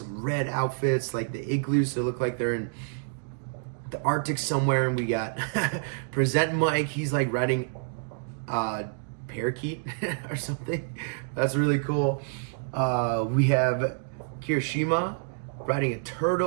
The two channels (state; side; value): silent; left; digital silence